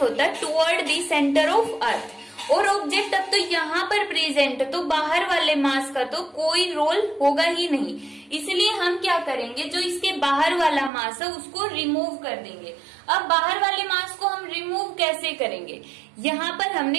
होता है toward the centre of earth. और ऑब्जेक्ट अब तो यहाँ पर प्रेजेंट है तो बाहर वाले मास का तो कोई रोल होगा ही नहीं, इसलिए हम क्या करेंगे जो इसके बाहर वाला मास है उसको रिमूव कर देंगे। अब बाहर वाले मास को हम रिमूव कैसे करेंगे, यहाँ पर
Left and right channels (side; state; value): left; drops out; at 10.9 s